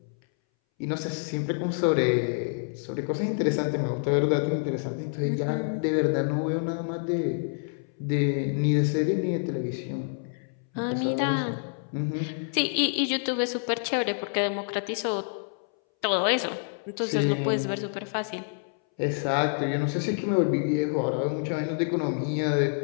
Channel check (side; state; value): right; silent; 60 dB below the other